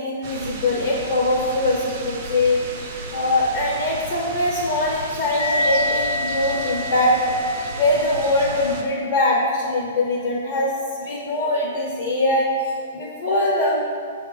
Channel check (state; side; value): inverted; both; correlation -0.40